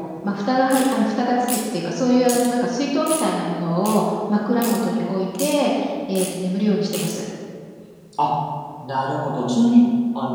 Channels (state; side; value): identical; both; correlation 1.00